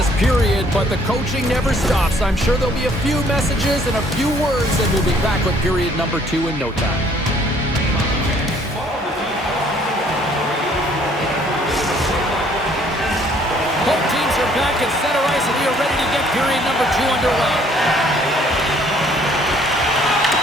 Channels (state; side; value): normal; both; correlation 0.61